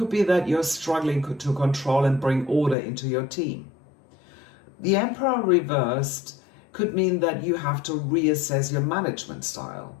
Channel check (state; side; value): drops out; right; at 2.8 s